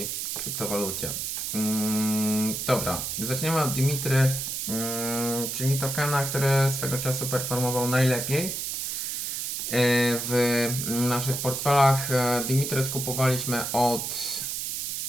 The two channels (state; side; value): noise; right; hiss, 3 dB below the sound